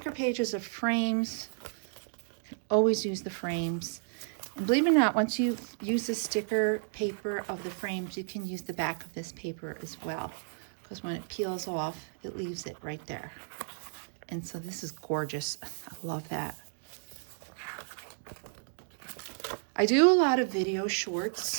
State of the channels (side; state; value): left; silent; digital silence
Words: pages of frames. You can always use the frames. And believe it or not, once you use the sticker paper of the frames, you can use the back of this paper as well. Because when it peels off, it leaves it right there. And so this is gorgeous. I love that. I do a lot of video